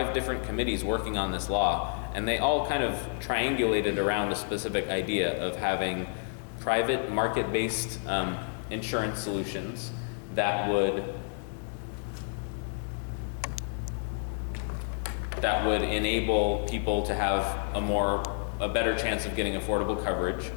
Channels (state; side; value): silent; right; 58 dB below the other